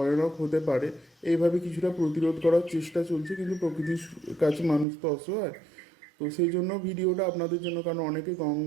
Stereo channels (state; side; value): drops out; left; at 4.9 s